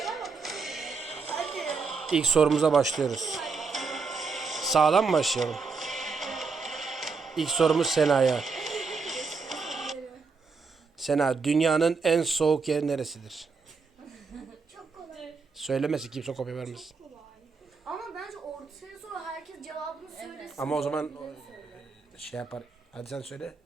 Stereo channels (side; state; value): left; quieter; 4.8 dB